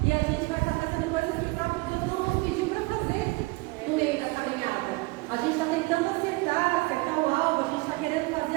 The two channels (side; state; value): left; quieter; 24.6 dB